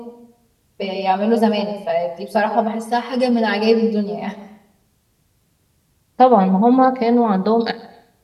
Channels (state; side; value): identical; both; correlation 1.00